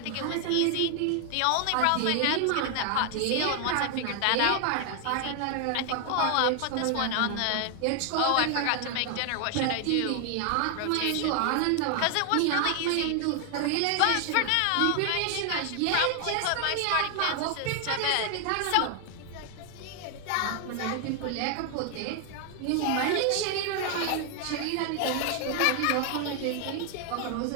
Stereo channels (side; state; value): both; different; correlation 0.00